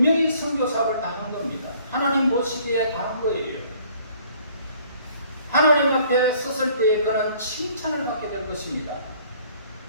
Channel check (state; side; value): inverted; both; correlation -0.57